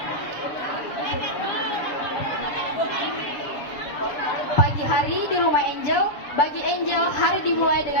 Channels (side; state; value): right; late; 7.1 ms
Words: Pagi hari di rumah Angel, bagi Angel hari dimulai